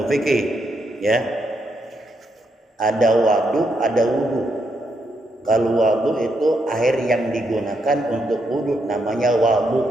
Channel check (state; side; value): normal; both; correlation 0.79